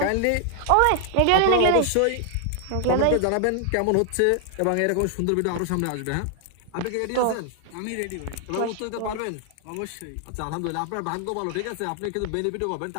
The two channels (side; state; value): both; different; correlation 0.00